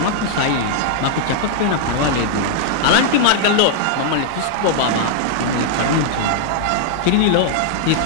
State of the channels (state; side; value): different; both; correlation -0.01